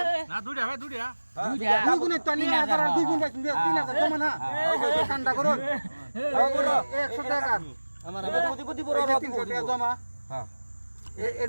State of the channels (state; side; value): inverted; both; correlation -1.00